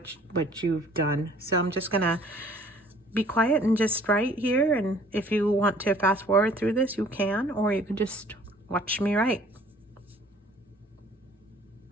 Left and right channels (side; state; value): both; normal; correlation 0.55